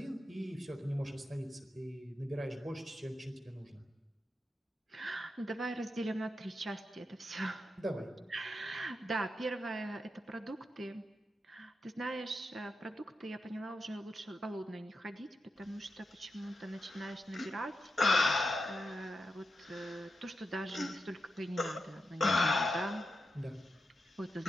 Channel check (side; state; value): both; normal; correlation 0.88